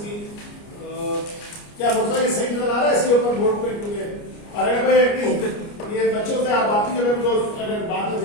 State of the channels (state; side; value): late; right; 29 ms